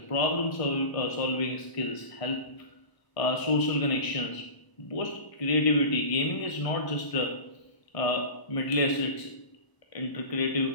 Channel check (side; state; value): right; late; 1.0 ms